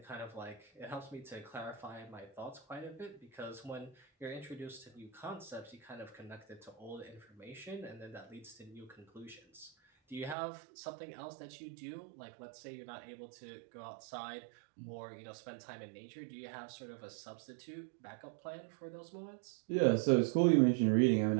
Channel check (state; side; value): drops out; left; at 10.4 s